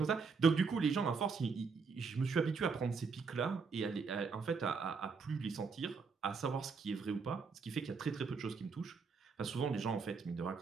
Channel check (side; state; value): left; quieter; 5.0 dB